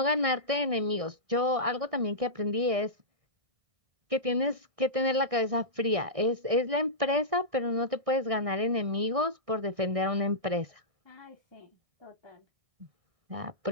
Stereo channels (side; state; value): left; late; 1.6 ms